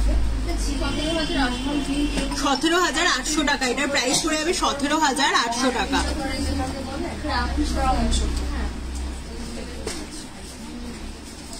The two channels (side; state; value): both; identical; correlation 1.00